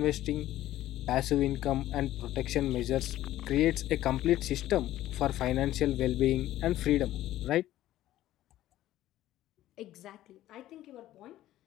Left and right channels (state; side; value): quieter; right; 14.1 dB